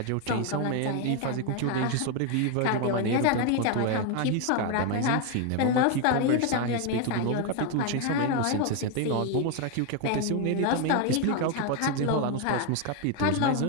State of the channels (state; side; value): different; both; correlation 0.01